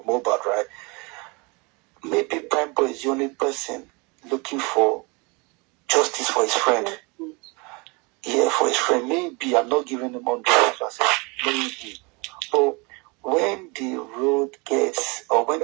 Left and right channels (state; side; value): quieter; left; 28.7 dB